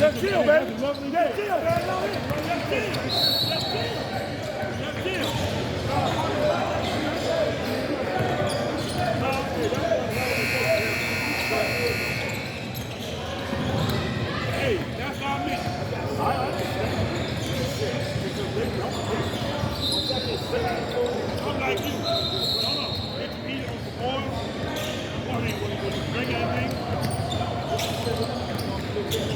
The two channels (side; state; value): both; identical; correlation 1.00